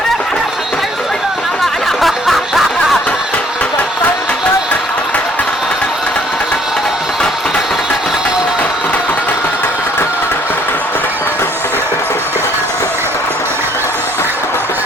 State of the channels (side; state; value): both; normal; correlation 0.61